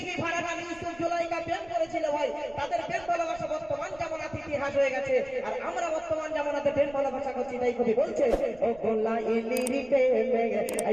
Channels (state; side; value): noise; right; rumble, 23 dB below the sound